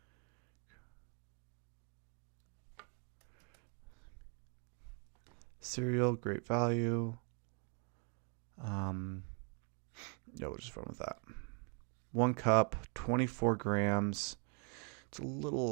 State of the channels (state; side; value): quieter; left; 39.3 dB